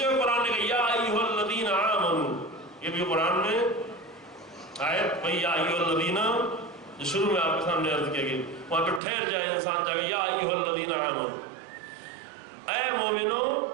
جگہ قرآن نے کہا یا ایھا الذین آمنوا، یہ بھی قرآن میں آیت بھائی یا ایھا الذین جو شروع میں آپ کے سامنے عرض کیا گیا، وہاں پہ ٹھہر جائے انسان جا کے یا ایھا الذین آمنوا، اے مومنو،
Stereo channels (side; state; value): left; drops out; at 9.0 s